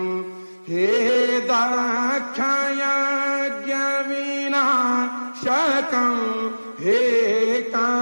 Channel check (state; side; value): inverted; both; correlation -1.00